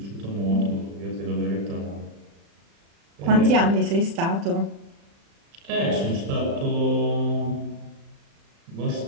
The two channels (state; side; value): late; left; 35 ms